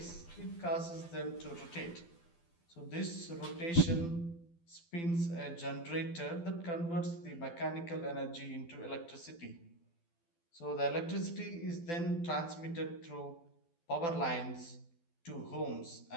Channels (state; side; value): late; right; 12 ms